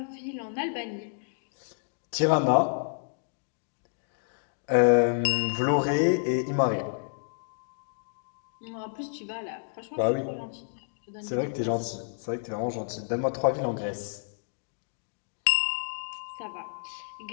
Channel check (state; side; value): silent; right; digital silence